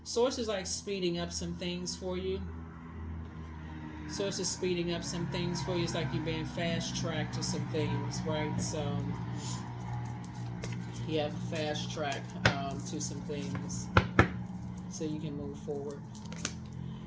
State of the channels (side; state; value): both; identical; correlation 1.00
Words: Source is like speeding up some things for you. Source is speeding up some things for you. It's like you're being fast-tracked to some things, right? So, yeah, fast-track to some things so you can move forward.